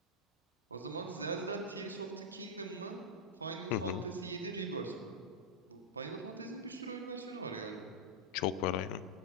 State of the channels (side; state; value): both; normal; correlation -0.06